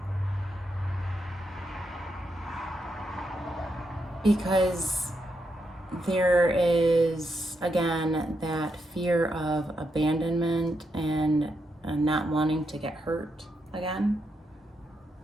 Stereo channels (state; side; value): normal; both; correlation 0.82